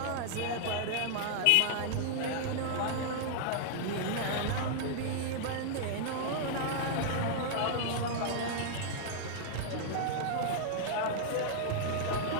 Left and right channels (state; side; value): different; both; correlation -0.01